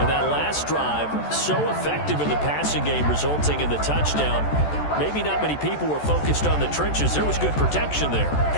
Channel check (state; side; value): late; right; 14 ms